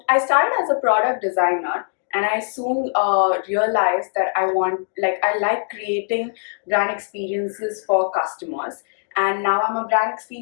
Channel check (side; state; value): right; silent; digital silence